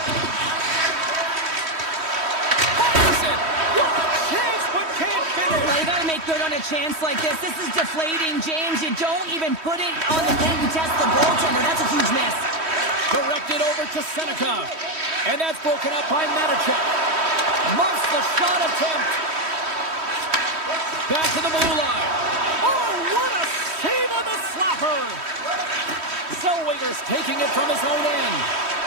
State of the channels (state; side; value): late; left; 3.1 ms